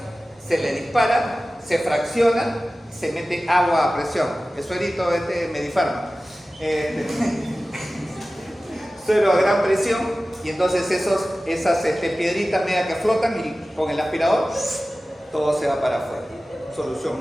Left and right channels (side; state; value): both; normal; correlation 0.96